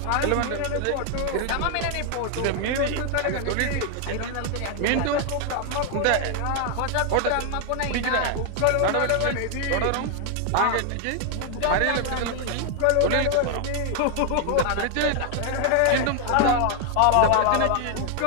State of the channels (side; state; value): both; different; correlation 0.00